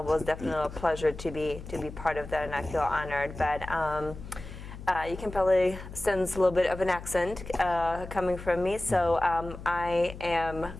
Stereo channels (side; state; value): left; noise; hum, 12 dB below the sound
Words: It was definitely a pleasure to be part of that, and I feel honored. But you can probably sense a little bit of an accent coming from me. So I